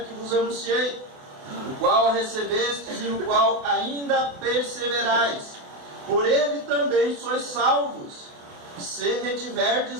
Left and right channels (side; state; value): left; late; 28 ms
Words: que vos anunciei, o qual recebestes e no qual ainda perseverais. Por ele também sois salvos, se